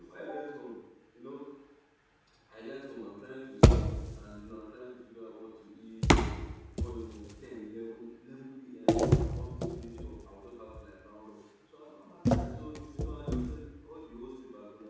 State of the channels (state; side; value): identical; both; correlation 1.00